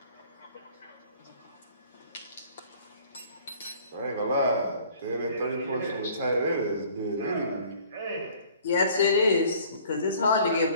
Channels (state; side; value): inverted; both; correlation -0.53